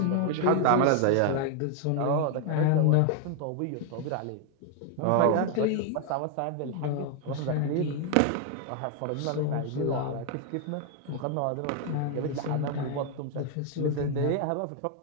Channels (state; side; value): different; both; correlation 0.00